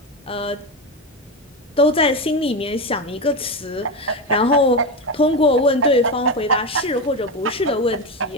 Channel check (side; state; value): both; normal; correlation 0.16